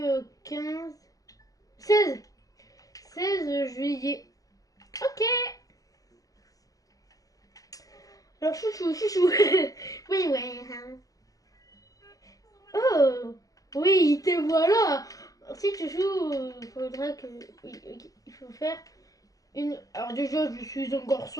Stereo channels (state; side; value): late; right; 0.17 ms